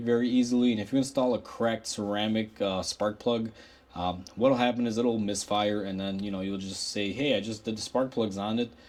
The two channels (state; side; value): identical; both; correlation 1.00